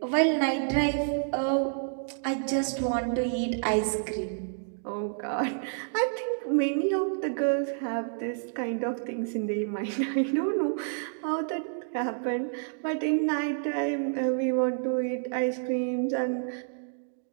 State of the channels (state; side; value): silent; left; digital silence